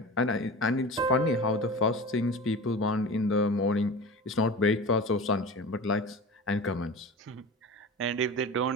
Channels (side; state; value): both; normal; correlation 0.33